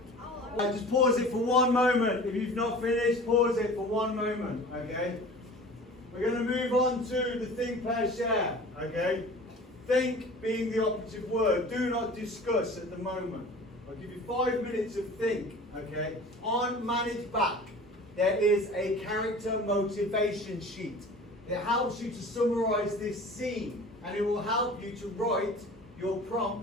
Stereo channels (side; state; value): both; normal; correlation 0.41